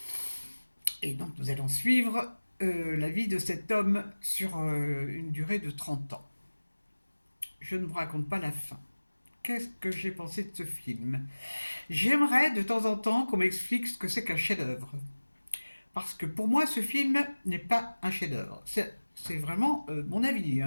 Et donc nous allons suivre la vie de cet homme sur une durée de 30 ans. Je ne vous raconte pas la fin. Qu'est-ce que j'ai pensé de ce film? J'aimerais de temps en temps qu'on m'explique ce que c'est qu'un chef-d'œuvre. Parce que pour moi, ce film n'est pas un chef-d'œuvre. C'est vraiment mon avis.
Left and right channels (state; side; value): inverted; both; correlation -1.00